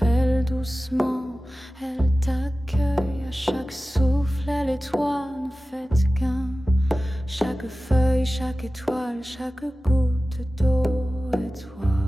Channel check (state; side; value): normal; both; correlation 0.96